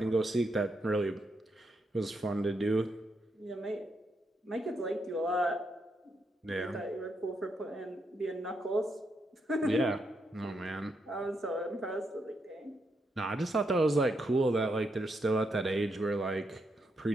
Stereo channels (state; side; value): normal; both; correlation 0.80